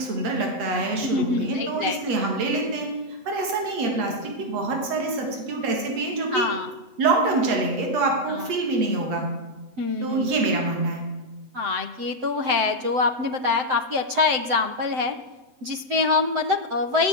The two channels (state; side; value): late; left; 7.9 ms